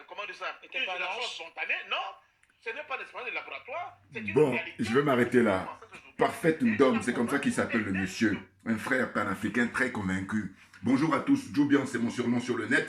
comment dire ça, N'était une pas génération lâche. spontanée. Non, ce n'est pas une expérience de laboratoire. C'est une Bon, réalité. je vais m'arrêter là. Parfait Ndom, c'est comme ça qu'il s'appelle le monsieur. Un frère panafricain très convaincu. Bonjour à tous, Joubian, c'est mon surnom sur le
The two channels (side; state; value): both; identical; correlation 1.00